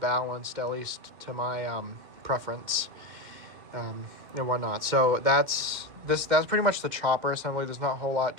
at least to my preference, and whatnot. So that's pretty much the chopper assembly. There's not a whole lot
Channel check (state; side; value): late; left; 2.1 ms